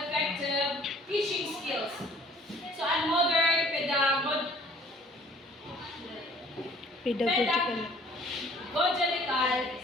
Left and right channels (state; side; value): normal; both; correlation 0.54